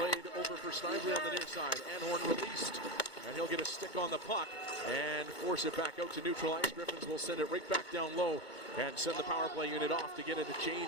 over for Snively on the near side. Anhorn released, and he'll get a stick on the puck and force it back out to neutral ice. Griffins will send it right back down low and send the power play unit off to get it a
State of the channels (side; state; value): right; late; 2.2 ms